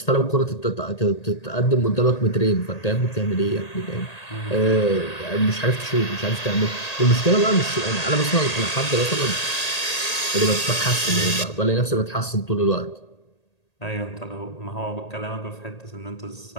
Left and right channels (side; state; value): right; late; 1.8 ms